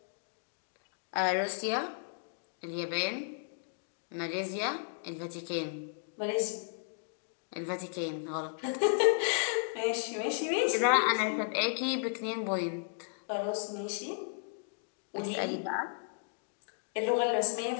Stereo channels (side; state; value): right; silent; digital silence